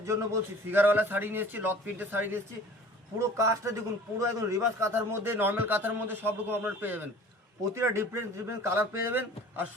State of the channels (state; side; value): normal; both; correlation 0.45